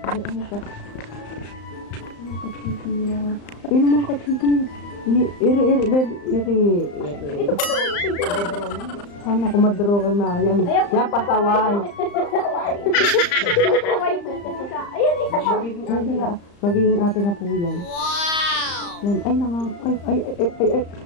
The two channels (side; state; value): right; late; 35 ms